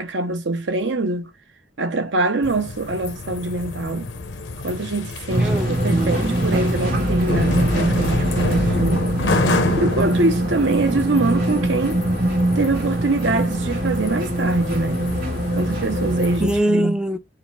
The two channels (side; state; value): both; normal; correlation 0.55